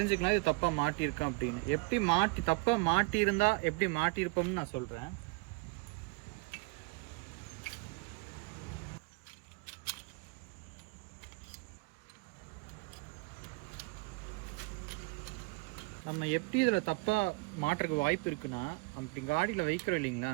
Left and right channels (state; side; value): quieter; left; 28.1 dB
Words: இது தப்பாக மாட்டியிருக்கோம் அப்படின்னு. எப்படி தப்பாக மாட்டியிருந்தா எப்படி மாட்டியிருப்போம்னு நான் சொல்கிறேன். நம்ம எப்படி இதில் தப்பாக மாட்டுறதுக்கு வாய்ப்பு இருக்குன்னா, நம்ம இப்படி காடியில் வைக்கிறோம் இல்லைங்களா,